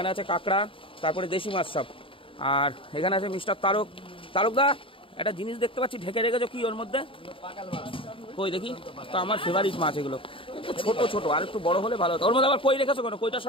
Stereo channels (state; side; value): late; right; 0.26 ms